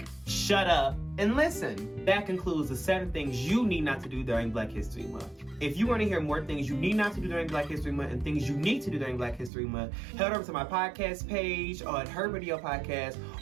shut up, and listen. That concludes the 7 things you need not to do during Black History Month. If you want to hear more things you need not to do during Black History Month and things you need to do during Black History Month, head over to my podcast page on Her Radio Podcast,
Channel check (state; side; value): drops out; left; at 9.5 s